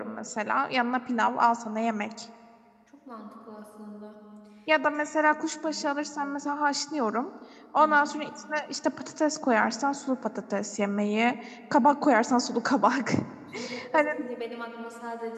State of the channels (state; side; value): identical; both; correlation 1.00